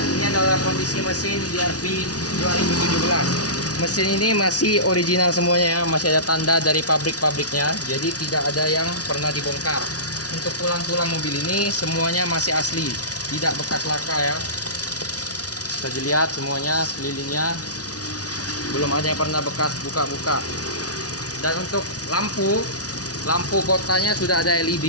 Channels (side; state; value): right; late; 0.68 ms